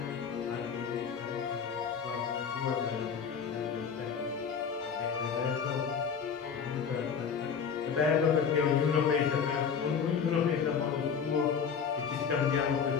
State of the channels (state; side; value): quieter; right; 6.7 dB